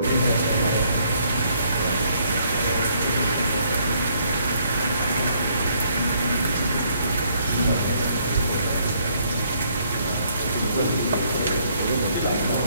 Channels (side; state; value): both; inverted; correlation -0.67